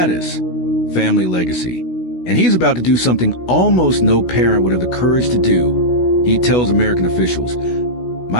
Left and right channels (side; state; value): right; late; 16 ms